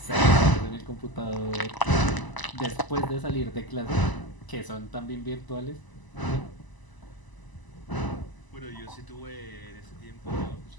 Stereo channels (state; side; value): late; right; 1.0 ms